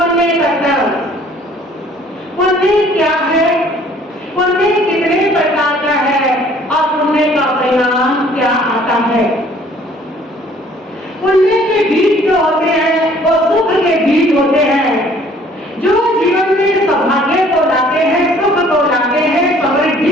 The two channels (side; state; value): both; normal; correlation 0.57